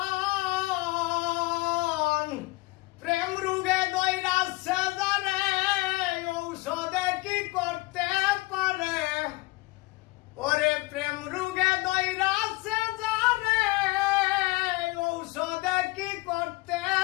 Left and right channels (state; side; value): quieter; right; 22.7 dB